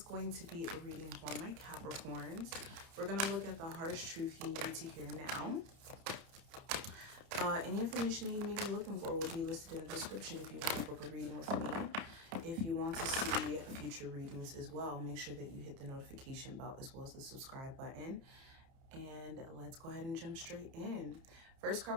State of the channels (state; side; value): late; left; 30 ms